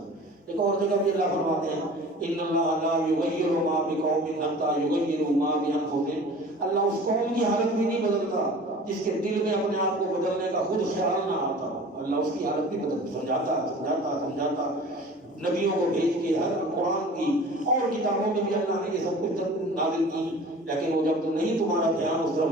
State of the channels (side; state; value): both; normal; correlation 0.42